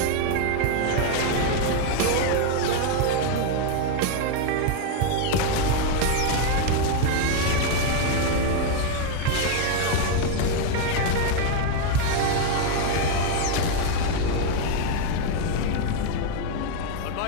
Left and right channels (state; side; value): different; both; correlation 0.01